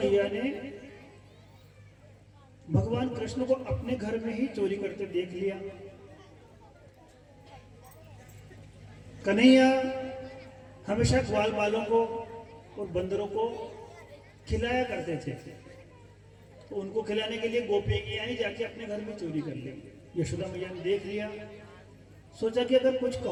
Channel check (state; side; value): identical; both; correlation 1.00